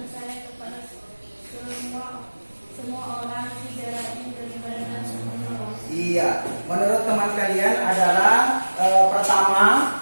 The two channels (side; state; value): both; inverted; correlation -1.00